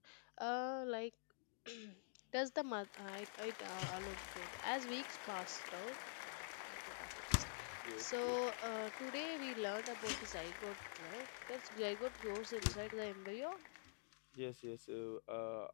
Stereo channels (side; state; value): right; silent; digital silence